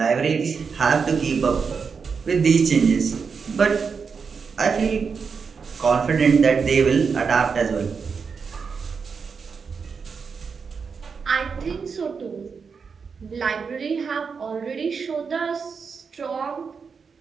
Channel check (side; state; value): left; quieter; 5.6 dB